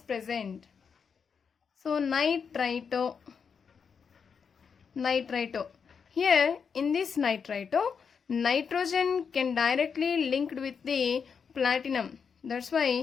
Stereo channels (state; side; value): quieter; right; 6.3 dB